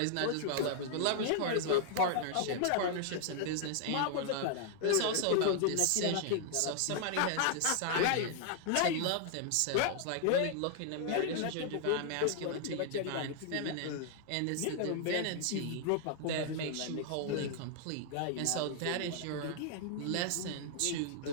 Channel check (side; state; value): both; different; correlation 0.00